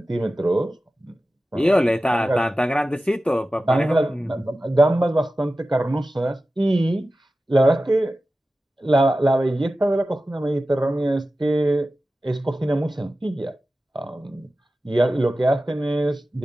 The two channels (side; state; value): both; normal; correlation 0.94